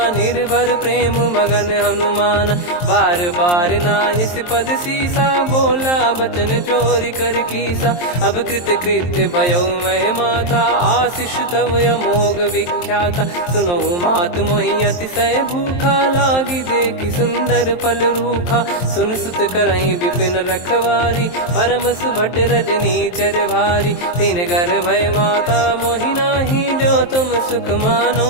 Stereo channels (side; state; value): right; late; 23 ms